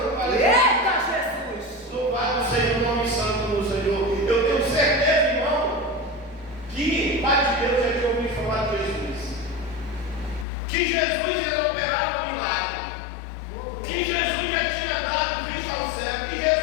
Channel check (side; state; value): right; drops out; at 10.5 s